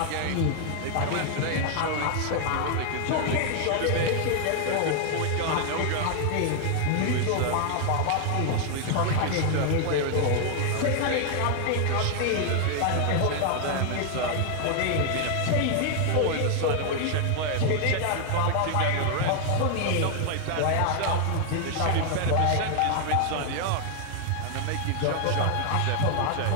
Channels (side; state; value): both; different; correlation 0.00